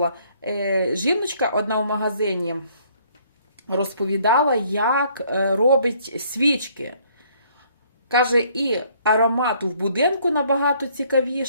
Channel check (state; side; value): inverted; both; correlation -0.63